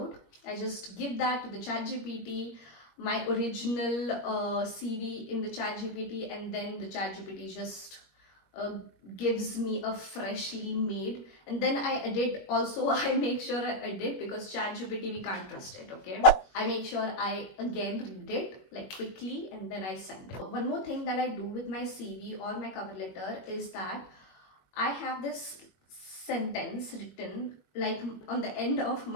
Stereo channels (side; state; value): right; late; 21 ms